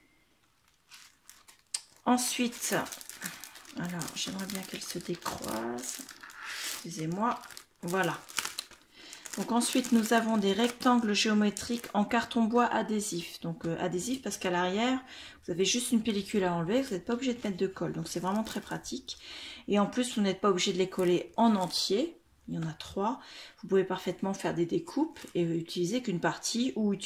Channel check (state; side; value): identical; both; correlation 1.00